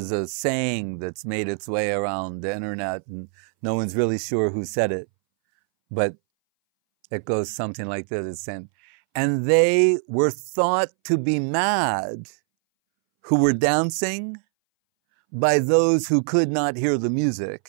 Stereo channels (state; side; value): silent; left; 62 dB below the other